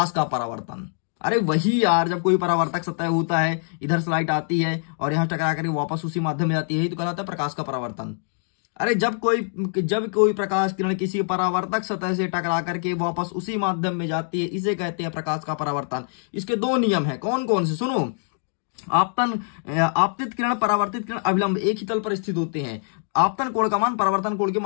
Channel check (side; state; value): right; silent; 63 dB below the other